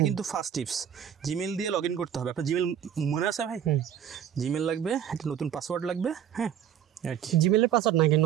কিন্তু ফার্স্ট টিপস, জিমেল দিয়ে লগ ইন করতে হবে। আপনার জিমেল মনে আছে ভাই? জিমেল লাগবে, একটা নতুন পাসওয়ার্ড লাগবে, হ্যাঁ জিমেলের পাসওয়ার্ড নাকি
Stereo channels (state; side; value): quieter; left; 9.4 dB